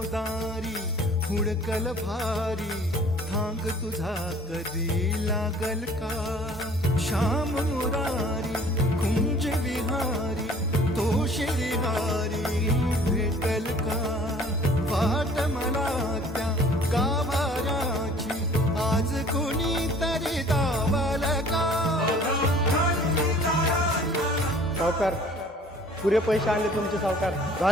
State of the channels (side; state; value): both; normal; correlation 0.52